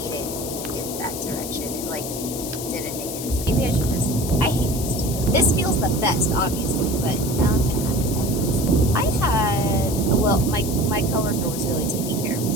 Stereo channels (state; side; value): noise; left; hiss, 8 dB below the sound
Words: it in that direction. It didn't make any sense. Maybe maybe I should just, I hate this too though. This feels the best, obviously, but now I'm gonna have to edit this. I had, well, my coworker was really taking care of